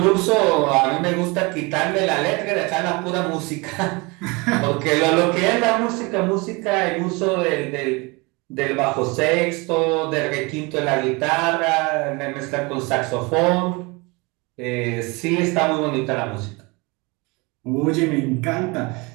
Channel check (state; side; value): quieter; left; 26.7 dB